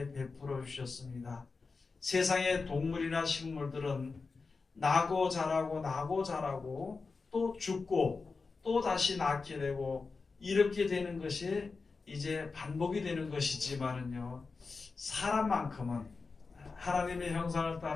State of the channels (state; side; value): quieter; right; 4.4 dB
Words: 베풀어 주셨습니다. 세상의 동물이나 식물들은 나고 자라고 또 죽고 또 다시 낳게 되고 이렇게 되는 것이 이제 반복이 되는 것이지만은요, 사람만큼은 하나님의 형상을